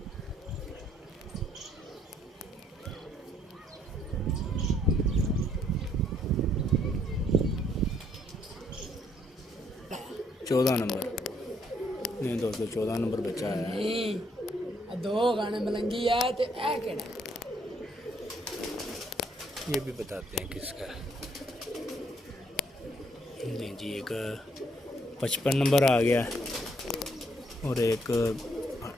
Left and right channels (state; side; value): normal; both; correlation 0.69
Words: चौदह नंबर नहीं दोस्तों, 14 नंबर बच्चा है। नहीं दो गाने मलंगी है तो ऐ केड़ा ये भी बताते हैं किसका है। नहीं जी, एक 55 नंबर आ गया और एक